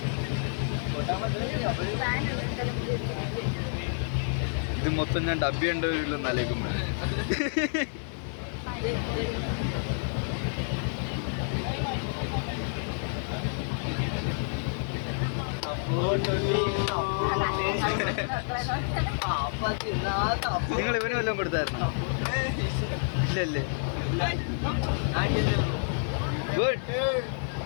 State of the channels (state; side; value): silent; right; 59 dB below the other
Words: ഇത് മൊത്തം ഞാൻ ഡബ്ബി ഉണ്ടോ നലേക്കുമ്പോ നിങ്ങൾ ഇവന് വല്ലതും കൊടുത്തായിരുന്നു? ഇല്ലല്ലേ? ഗുഡ്.